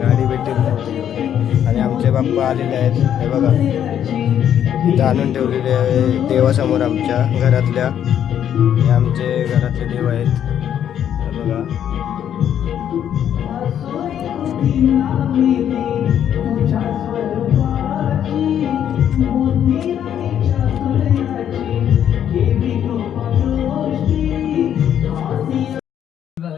भेटली नव्हती. आणि आमचे बाप्पा आलेले आहेत, हे बघा इथं आणून ठेवलेले आहे देवासमोर आमच्या घरातल्या. हे आमचे घरातले देव आहेत, हे बघा.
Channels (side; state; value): right; quieter; 9.7 dB